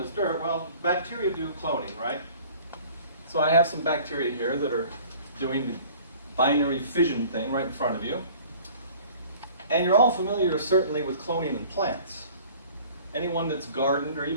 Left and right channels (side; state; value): both; inverted; correlation -0.48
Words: dirt? Well, bacteria do cloning, right? So I have some bacteria here that are doing the binary fission thing right in front of you. And you're all familiar, certainly, with cloning in plants. Anyone that's gardened, or